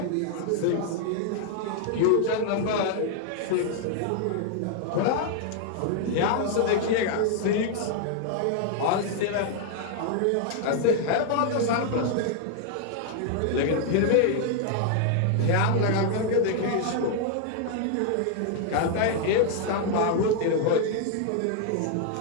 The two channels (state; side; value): different; both; correlation 0.00